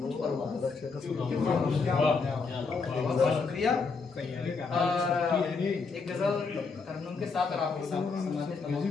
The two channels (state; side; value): quieter; right; 4.6 dB